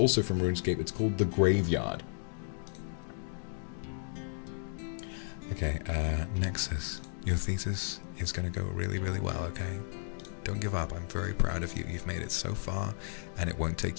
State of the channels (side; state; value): right; silent; digital silence